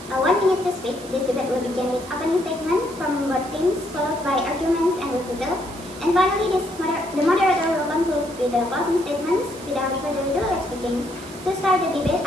1 minute to speak. This debate will begin with opening statement from both teams, followed by arguments and rebuttal. And finally, the moderator will conclude with the closing statements. Without further ado, let's begin. To start the debate,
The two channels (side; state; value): right; noise; hiss, 17 dB below the sound